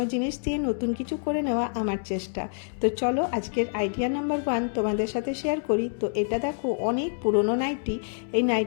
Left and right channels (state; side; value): silent; right; 60 dB below the other